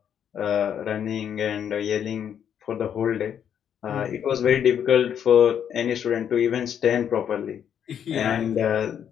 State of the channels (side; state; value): right; quieter; 8.8 dB